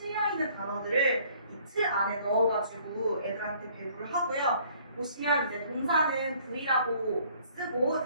단어들을 이 틀 안에 넣어가지고 애들한테 배부를 하고요. 보시면 이제 동사는 V라고 쓰고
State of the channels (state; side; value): inverted; both; correlation -0.58